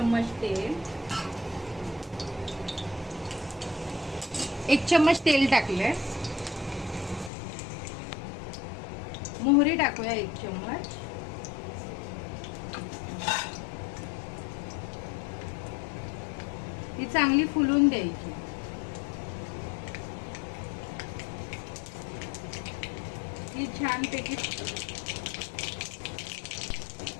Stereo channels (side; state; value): right; drops out; at 7.3 s